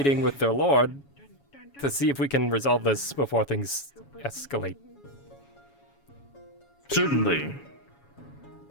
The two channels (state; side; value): late; right; 7.2 ms